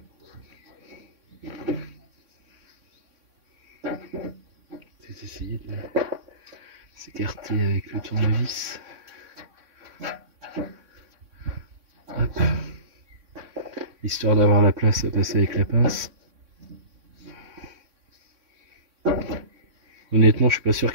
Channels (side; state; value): left; late; 3.6 ms